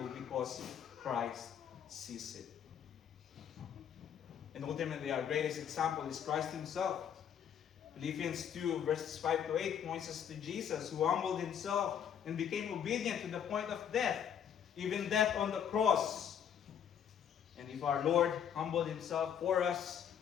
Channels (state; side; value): quieter; right; 8.6 dB